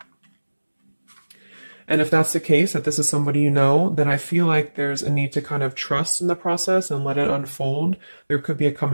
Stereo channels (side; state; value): both; inverted; correlation -1.00